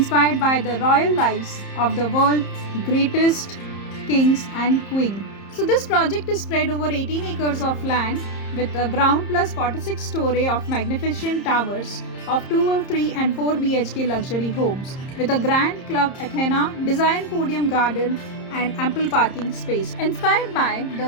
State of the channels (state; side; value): late; right; 30 ms